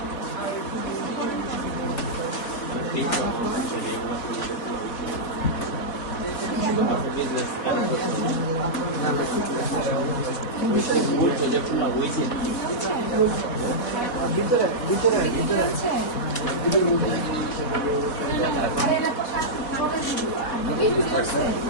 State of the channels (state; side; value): late; right; 4.1 ms